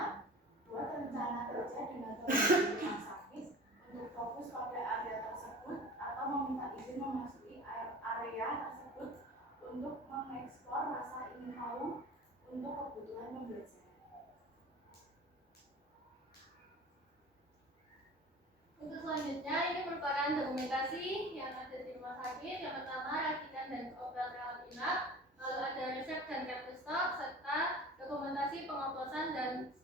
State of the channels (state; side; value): normal; both; correlation 0.39